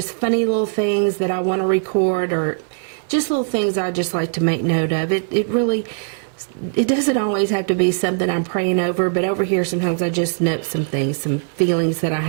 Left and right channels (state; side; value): silent; left; digital silence